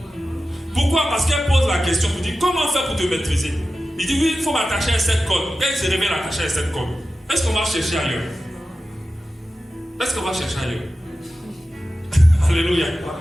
Pourquoi? Parce qu'elle pose la question, vous dit comment faire pour te maîtriser? Il dit oui, il faut m'attacher à cette corde. Quand il se réveille attaché à cette corde, est-ce qu'on va chercher ailleurs? Est-ce qu'on va chercher ailleurs? Alléluia.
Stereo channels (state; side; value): normal; both; correlation 0.93